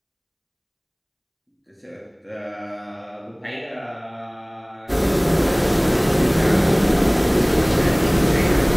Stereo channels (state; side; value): identical; both; correlation 1.00